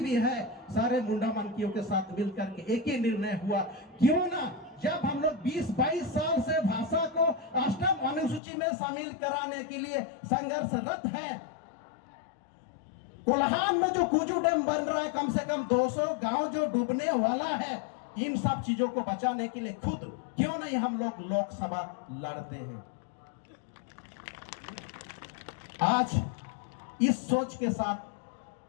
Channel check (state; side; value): drops out; right; at 8.4 s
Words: भी है, सारे मुंडामनकियों के साथ मिलकर के एक ही निर्णय हुआ, क्यों ना जब हम लोग 20-22 साल से भाषा को 8वीं अनुसूची में शामिल कराने के लिए संघर्षरत हैं। कोल्हान में जो कुजू डैम बन रहा है, कम से कम 200 गांव जो डूबने वाला है, इन सब चीजों को बचाने के लिए खुद क्यों नहीं हम लोग लोकसभा लड़ते हैं। आज इस सोच के